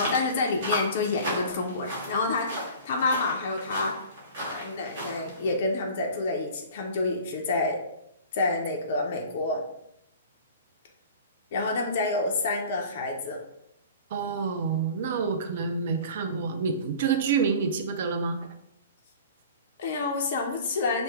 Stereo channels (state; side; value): inverted; both; correlation -0.42